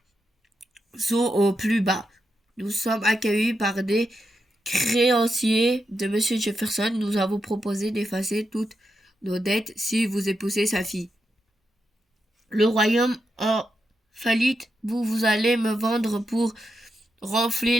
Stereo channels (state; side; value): normal; both; correlation 0.85